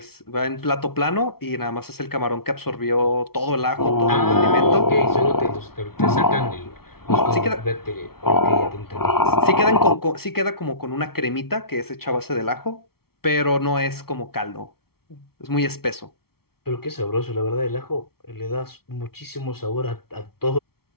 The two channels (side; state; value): right; late; 0.95 ms